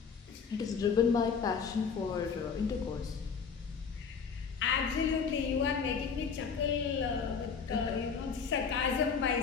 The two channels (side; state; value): right; quieter; 6.0 dB